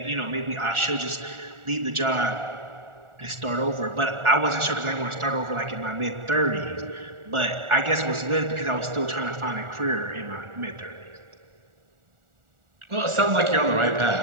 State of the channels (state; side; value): late; left; 1.4 ms